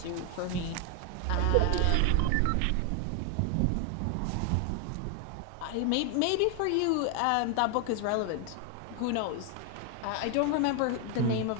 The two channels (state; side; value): different; both; correlation 0.00